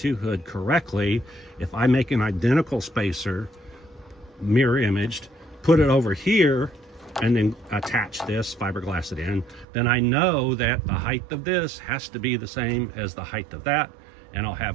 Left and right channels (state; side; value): drops out; left; at 9.7 s